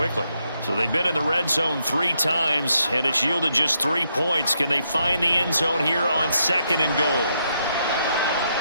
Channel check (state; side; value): inverted; both; correlation -0.78